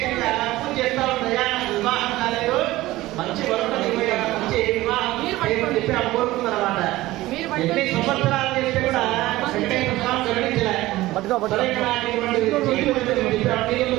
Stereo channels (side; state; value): left; quieter; 17.5 dB